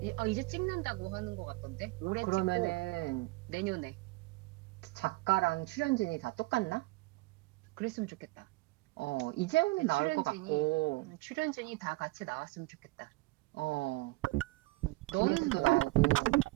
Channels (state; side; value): quieter; left; 22.0 dB